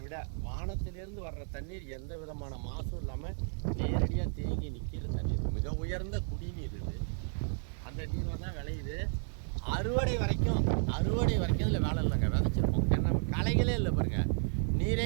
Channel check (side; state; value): left; silent; 56 dB below the other